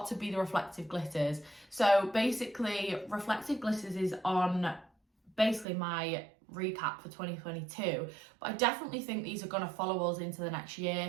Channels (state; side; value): drops out; left; at 5.7 s